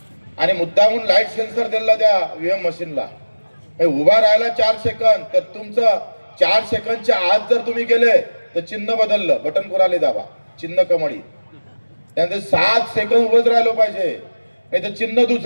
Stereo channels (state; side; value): inverted; both; correlation -1.00